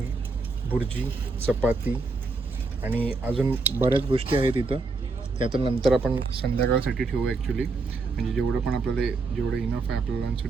भुर्जी, चपाती आणि अजून बऱ्याच गोष्टी आहेत इथं. ते आता नंतर आपण संध्याकाळसाठी ठेवू ॲक्च्युली. म्हणजे जेवढं पण आपल्याला जेवढं इनफ आहे आपल्या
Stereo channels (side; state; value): left; quieter; 3.8 dB